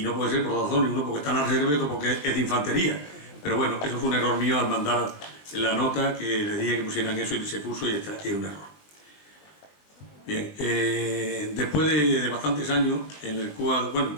no puede ser por dos razones, uno porque está en la reserva y otro porque es de infantería, pero bueno, eso fue un error mío al mandar la nota, que les dije que pusieran eso y se puso, y es un error. Bien, después de bastantes años en el cual, bueno, en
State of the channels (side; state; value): right; late; 20 ms